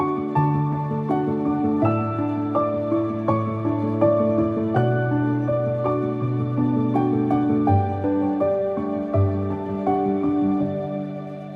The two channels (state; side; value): identical; both; correlation 1.00